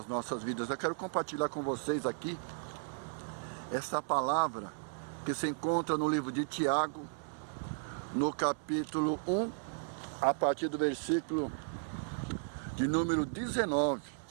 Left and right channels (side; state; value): left; silent; 54 dB below the other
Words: nossas vidas. Eu quero compartilhar com vocês aqui essa palavra que se encontra no livro de Tiago, no capítulo 1, a partir do versículo de número 19.